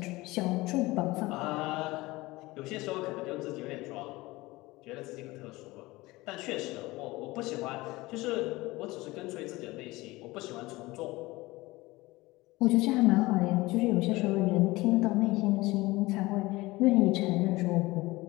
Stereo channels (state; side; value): quieter; right; 20.5 dB